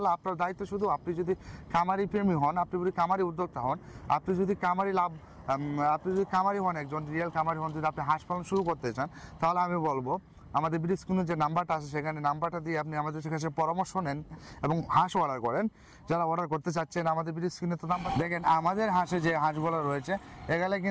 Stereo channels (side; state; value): both; identical; correlation 1.00